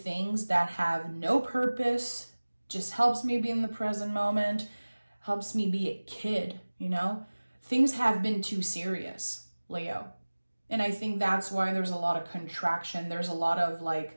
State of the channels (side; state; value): both; inverted; correlation -1.00